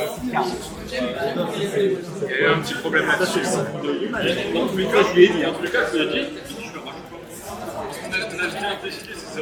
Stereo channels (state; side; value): identical; both; correlation 1.00